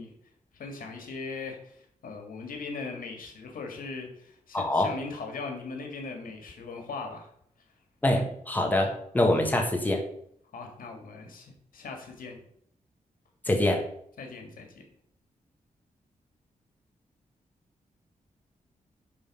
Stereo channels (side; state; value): both; normal; correlation 0.75